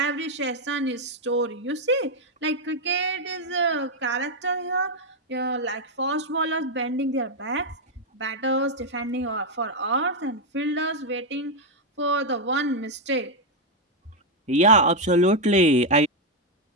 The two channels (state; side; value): normal; both; correlation 0.01